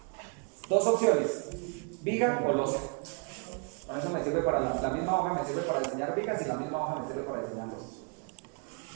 2 opciones, viga o losa. Con eso me sirve para la misma hoja, me sirve para diseñar vigas y la misma hoja me sirve para diseñar losas.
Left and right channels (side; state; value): left; quieter; 35.5 dB